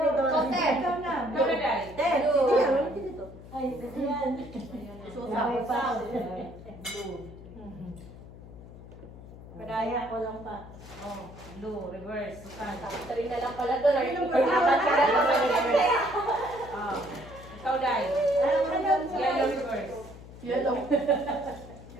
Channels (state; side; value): noise; left; hum, 16 dB below the sound